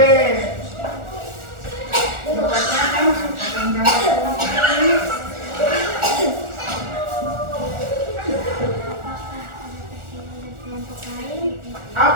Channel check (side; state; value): left; late; 1.4 ms